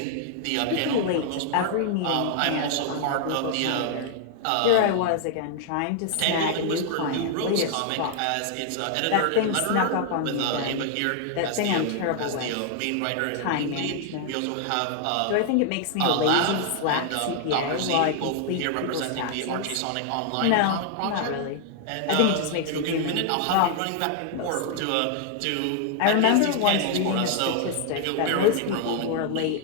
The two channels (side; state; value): both; different; correlation 0.00